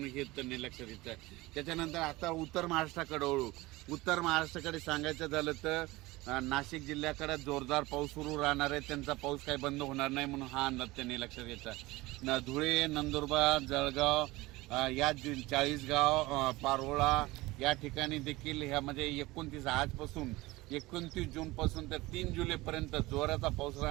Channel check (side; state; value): left; quieter; 20.4 dB